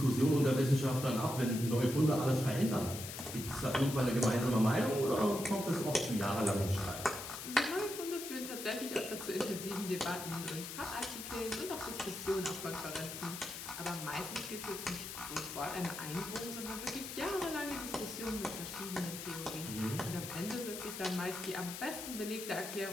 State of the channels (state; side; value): noise; left; hiss, 8 dB below the sound